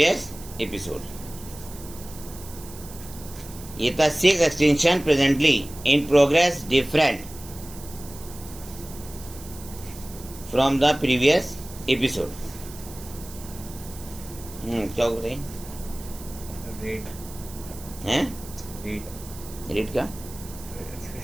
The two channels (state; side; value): noise; right; hiss, 16 dB below the sound